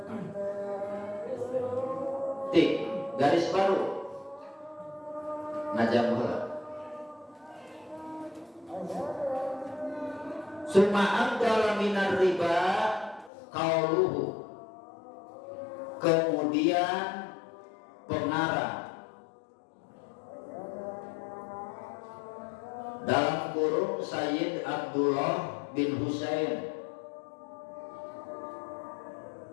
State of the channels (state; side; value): drops out; right; at 13.3 s